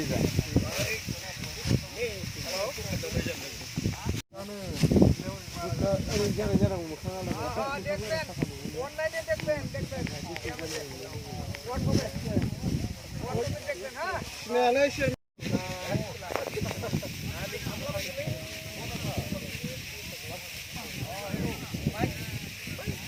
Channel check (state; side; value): identical; both; correlation 1.00